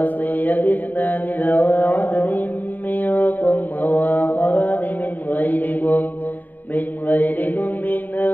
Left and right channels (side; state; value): right; late; 0.086 ms